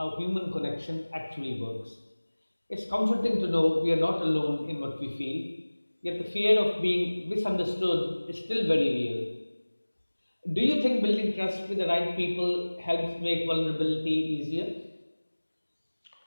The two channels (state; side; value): inverted; both; correlation -1.00